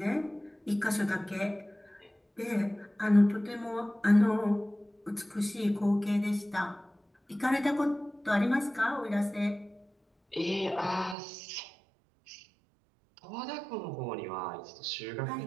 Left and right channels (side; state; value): left; drops out; at 11.2 s